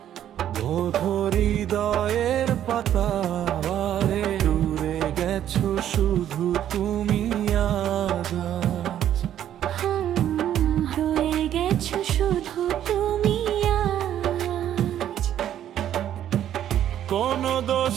বোধো হৃদয়ের পাতা দূরে গেছো শুধু তুমি আজ। রয়ে গেছো শুধু তুমি আজ। কোন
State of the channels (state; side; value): quieter; left; 10.9 dB